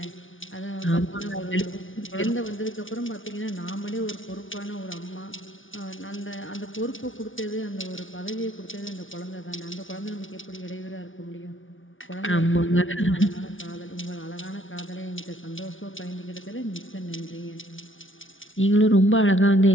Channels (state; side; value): late; right; 0.57 ms